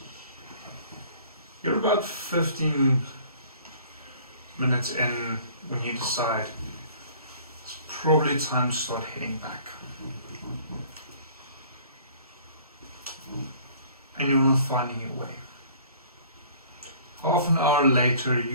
You're about 15 minutes in when you decide it's probably time to start heading back. And you're not finding your way. Half an hour later,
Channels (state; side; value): inverted; both; correlation -0.52